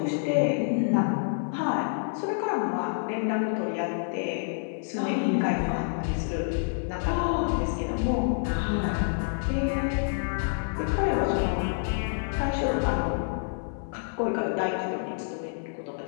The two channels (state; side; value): silent; right; digital silence